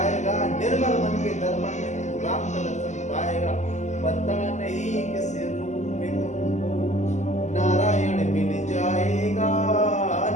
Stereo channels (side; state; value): right; late; 0.34 ms